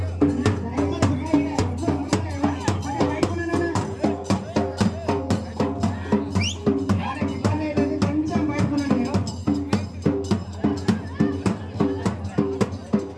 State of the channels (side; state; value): both; identical; correlation 1.00